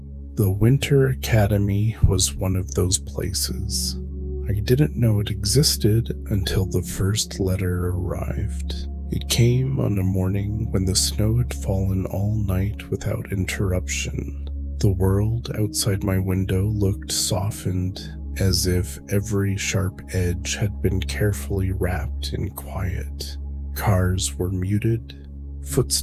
The Winter Academy was one of those places. I didn't know it existed until the first letter arrived. It came on a morning when the snow had fallen all night without interruption. The world outside my window looked softened, as if every sharp edge had been carefully wrapped in quiet. Cars were muted,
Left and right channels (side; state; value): both; identical; correlation 1.00